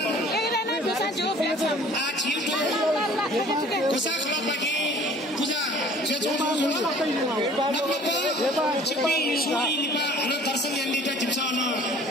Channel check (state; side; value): normal; both; correlation 0.51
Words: आज छिटो कोसा खलबागी पूजा जे जुल छिपी सुई लिपा अनि दर्शन यान्दिता जिम्सन